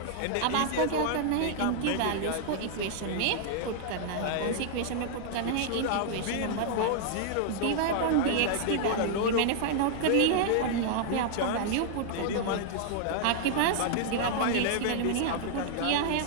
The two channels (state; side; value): different; both; correlation 0.00